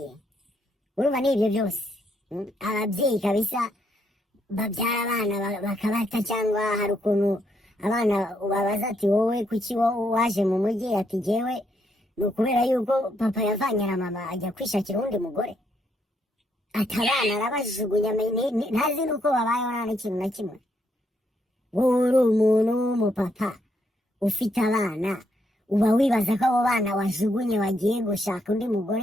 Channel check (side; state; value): both; normal; correlation 0.75